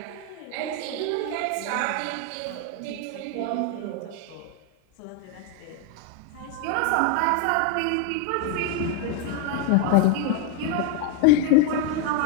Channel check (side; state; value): both; different; correlation 0.01